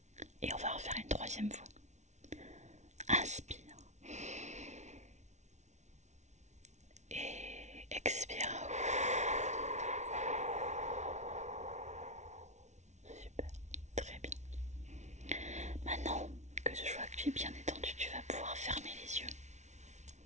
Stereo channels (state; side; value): late; left; 0.33 ms